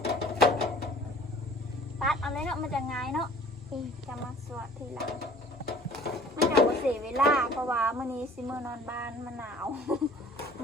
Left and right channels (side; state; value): both; normal; correlation 0.50